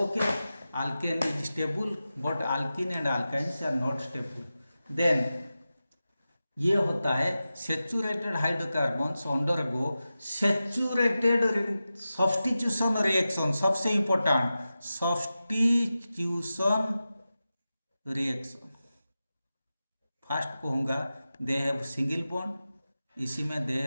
alkane is stable but alkene and alkynes are not stable. Then ये होता है saturated hydrocarbons undergo saturated substitution reaction. सबसे important substitution reaction. First कहूँगा they have single bond, इसी में they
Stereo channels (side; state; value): both; inverted; correlation -0.93